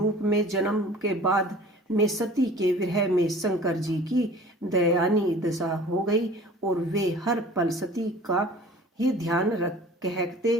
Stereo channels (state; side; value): normal; both; correlation 0.45